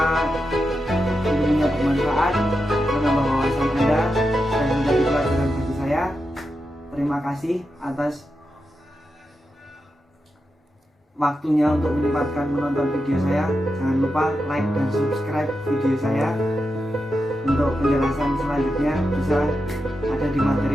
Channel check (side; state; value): both; normal; correlation 0.88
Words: ilmunya bermanfaat, menambah wawasan Anda dan menjadi pelajaran bagi saya. Terima kasih atas waktunya untuk menyempatkan menonton video saya. Jangan lupa like dan subscribe video saya. Untuk penjelasan selanjutnya bisa ada di